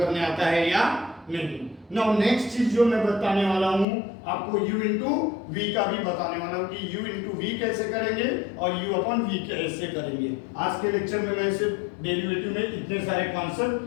आता है या नहीं। नाउ नेक्स्ट चीज जो मैं बताने वाला हूं आपको, u इंटू वी का भी बताने वाला हूं कि u इंटू वी कैसे करेंगे और u अपॉन वी कैसे करेंगे। आज के लेक्चर में मैं सिर्फ डेरिवेटिव में इतने सारे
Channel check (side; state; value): right; drops out; at 3.9 s